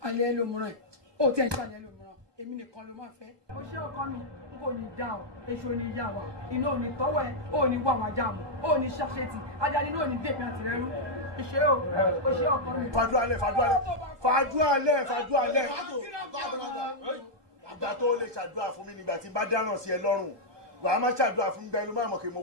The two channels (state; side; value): late; left; 1.2 ms